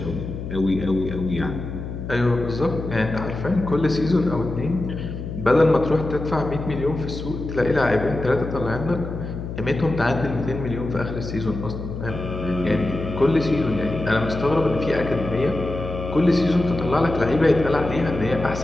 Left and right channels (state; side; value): noise; left; hum, 7 dB below the sound